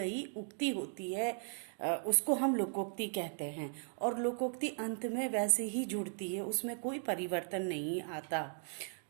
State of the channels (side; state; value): left; silent; 53 dB below the other